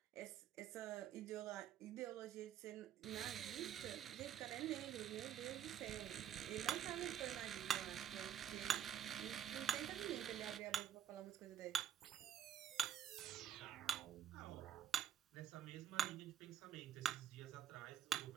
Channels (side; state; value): left; quieter; 9.7 dB